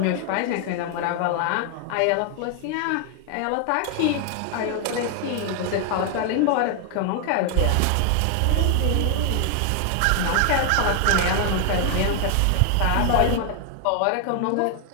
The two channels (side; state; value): both; different; correlation 0.00